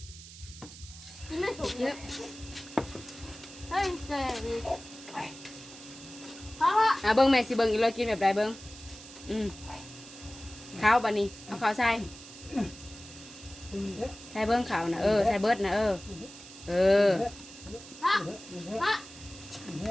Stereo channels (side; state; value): right; noise; hiss, 16 dB below the sound